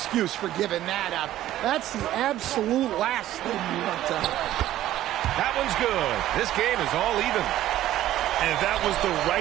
for giving that up. That's the absolute last thing you want to happen. That one's good. This game is all even. And that was the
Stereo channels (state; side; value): quieter; left; 13.6 dB